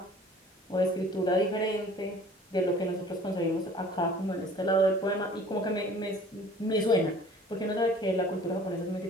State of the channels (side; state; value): both; normal; correlation 0.49